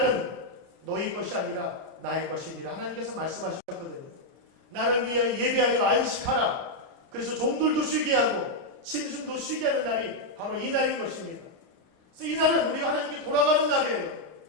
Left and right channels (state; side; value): late; left; 30 ms